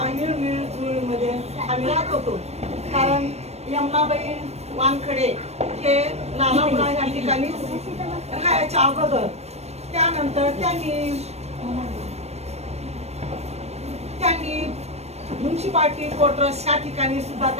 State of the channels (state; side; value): late; left; 0.31 ms